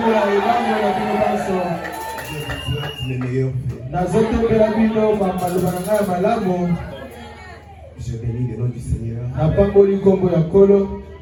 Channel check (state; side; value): identical; both; correlation 1.00